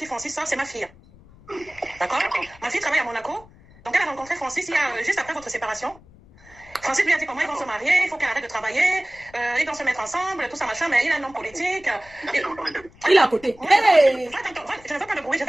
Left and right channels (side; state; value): left; noise; rumble, 24 dB below the sound